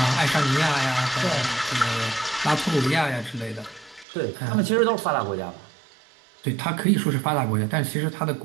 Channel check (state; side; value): drops out; left; at 4.0 s